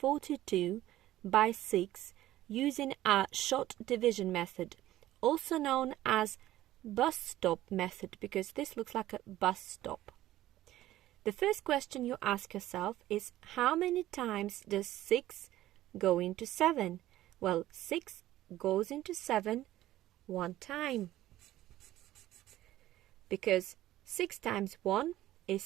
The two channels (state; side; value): quieter; left; 14.7 dB